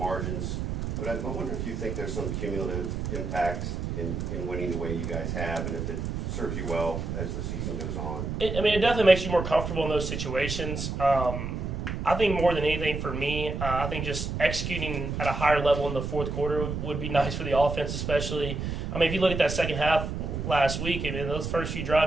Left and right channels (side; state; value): right; noise; rumble, 4 dB below the sound